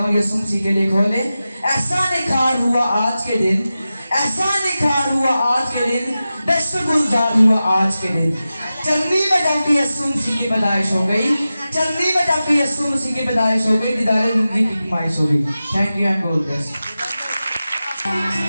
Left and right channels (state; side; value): inverted; both; correlation -0.94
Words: यीशु मसीह के लिए खोले। ऐसा निखार हुआ आज के दिन, ऐसा निखार हुआ आज के दिन, दस्त गुलजार हुआ आज के दिन। चलनी में जबकि यीशु मसीह की पैदाइश हो गई, चलनी में जबकि यीशु मसीह की पैदाइश हो गई, दीदारे जिंदगी की कमाइश हो गई। Thank you and God bless. Merry